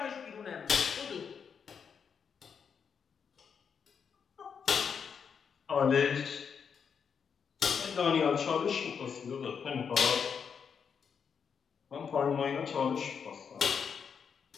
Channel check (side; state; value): right; quieter; 6.7 dB